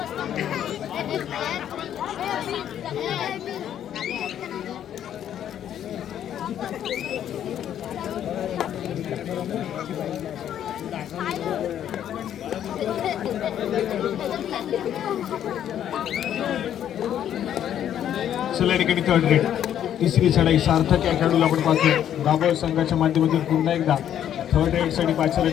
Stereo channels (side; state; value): right; quieter; 10.3 dB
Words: चला या ठिकाणी थर्ड रेड. तिसरी चढाई सार्थक या खेळाडूला आपण पाहतोय. दाभोळ संघाच्या माध्यमातून पुन्हा एकदा थर्ड रेडसाठी